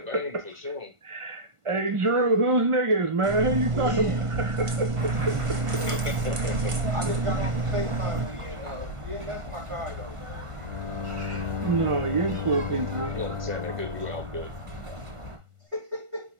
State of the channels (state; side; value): late; left; 1.5 ms